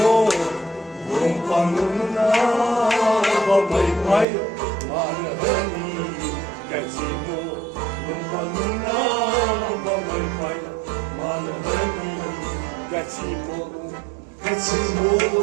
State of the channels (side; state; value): left; drops out; at 4.2 s